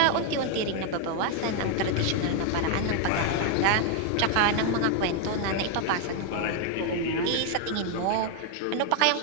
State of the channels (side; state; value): both; different; correlation 0.00